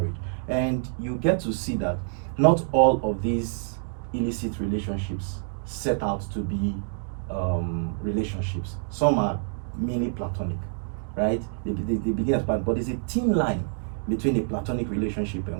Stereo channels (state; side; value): silent; left; digital silence